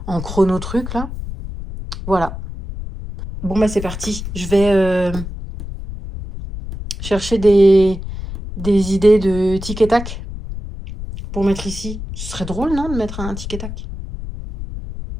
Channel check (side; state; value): left; noise; rumble, 9 dB below the sound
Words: en chrono truc, là. Voilà. Bon, bah c'est parti. Je vais chercher des idées de tic et tac pour mettre ici. Ce serait drôle, non, de mettre un tic et tac?